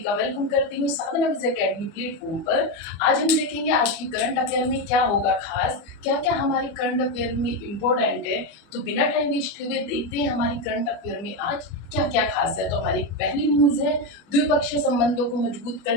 का वेलकम करती हूँ साधना विजय अकेडमी प्लेटफॉर्म पर। आज हम देखेंगे आज की करंट अफेयर में क्या होगा खास, क्या क्या हमारी करंट अफेयर में इम्पोर्टेंट है। तो बिना टाइम वेस्ट हुए देखते हैं हमारी करंट अफेयर में आज क्या क्या खास है। तो हमारी पहली न्यूज है, द्विपक्षीय संबंधों को मजबूत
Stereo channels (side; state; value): right; late; 24 ms